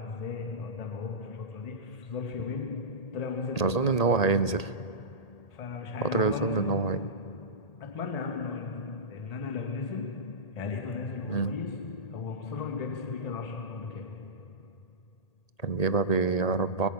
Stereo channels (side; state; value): right; late; 1.8 ms